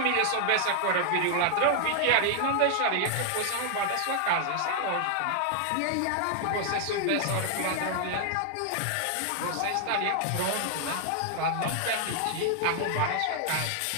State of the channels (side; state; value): both; different; correlation 0.00